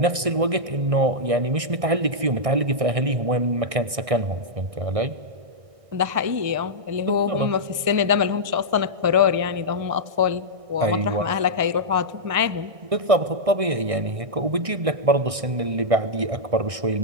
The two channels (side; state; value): left; late; 1.6 ms